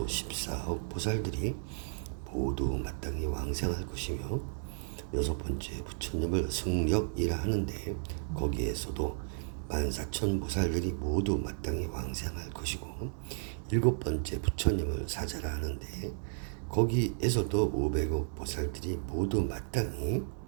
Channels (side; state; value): left; silent; digital silence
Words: 14억 보살들이 모두 마땅히 왕생할 것이며 여섯 번째 부처님을 승력이라 하는데 거기에서도 14,000 보살들이 모두 마땅히 왕생할 것이고 일곱 번째 부처님을 사자라 하는데 거기에서도 500억 보살들이 모두 마땅히